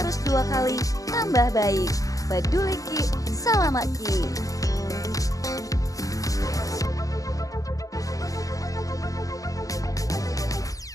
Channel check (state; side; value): late; right; 0.17 ms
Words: 2 kali tambah baik. Peduli Ki, Salamat Ki.